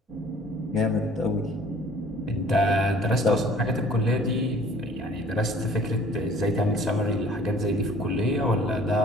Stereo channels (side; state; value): both; normal; correlation 0.53